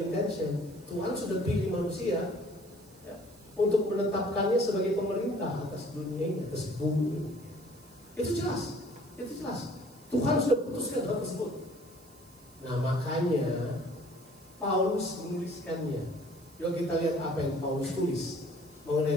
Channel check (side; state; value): right; noise; hiss, 26 dB below the sound